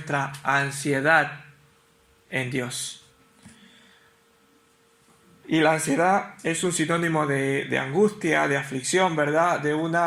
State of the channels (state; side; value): identical; both; correlation 1.00